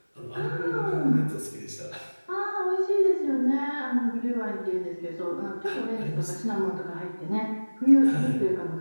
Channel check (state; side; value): inverted; both; correlation -1.00